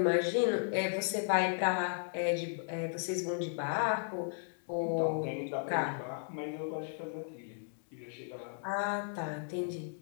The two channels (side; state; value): right; silent; digital silence